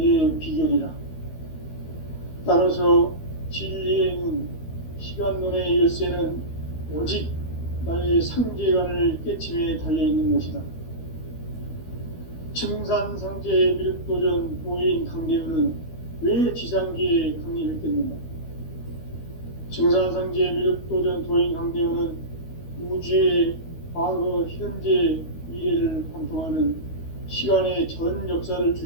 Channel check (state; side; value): late; right; 13 ms